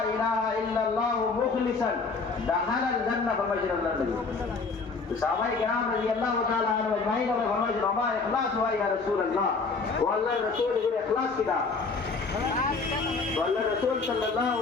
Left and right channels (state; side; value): quieter; right; 4.3 dB